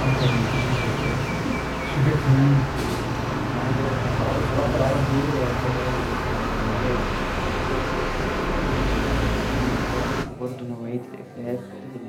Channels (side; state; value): both; identical; correlation 1.00